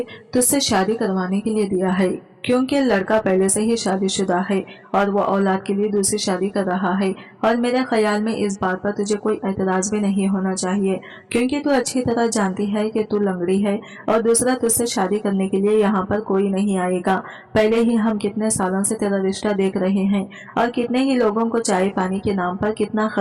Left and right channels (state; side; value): identical; both; correlation 1.00